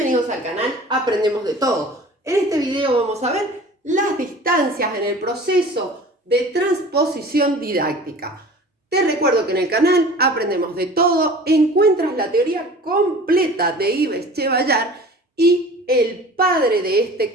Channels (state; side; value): normal; both; correlation 0.42